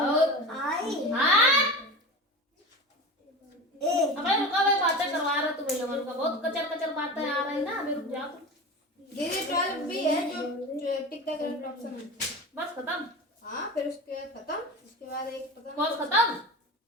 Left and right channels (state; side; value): normal; both; correlation 0.30